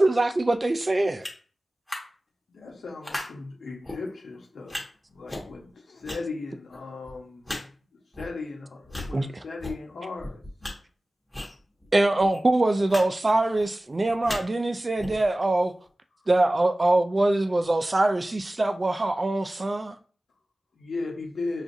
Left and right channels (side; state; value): both; normal; correlation 0.97